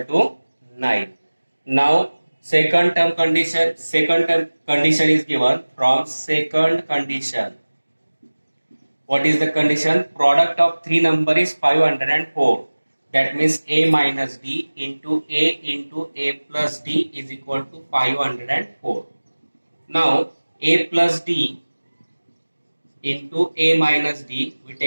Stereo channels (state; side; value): inverted; both; correlation -1.00